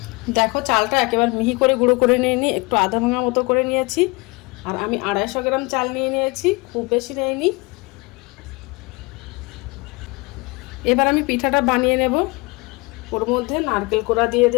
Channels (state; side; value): quieter; right; 26.8 dB